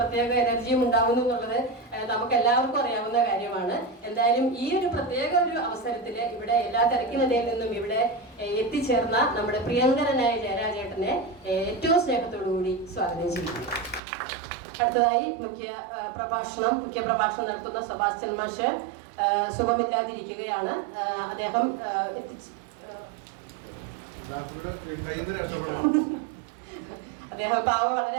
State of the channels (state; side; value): drops out; left; at 14.0 s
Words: എനർജിയും ഉണ്ടാകുന്നു എന്നുള്ളത് നമുക്ക് എല്ലാവർക്കും അറിയാവുന്ന കാര്യമാണ്. എന്തായാലും ഈ ഒരു പ്രത്യേക ഒരു അവസരത്തിൽ ഇവിടെ എല്ലാ തിരക്കിനിടയിൽ നിന്നും ഇവിടെ എത്തിച്ചേർന്ന നമ്മുടെ പ്രിയങ്കരനായ ജയരാജേട്ടനെ ഏറ്റവും സ്നേഹത്തോടുകൂടി സ്വാഗതം ചെയ്യുന്നു. അടുത്തതായി മുഖ്യ പ്രഭാഷണം നടത്തുന്ന സെബാസ്റ്റ്യൻ മാഷ് സുഖമില്ലാതിരിക്കുകയാണ്. അദ്ദേഹം പാവം വളരെ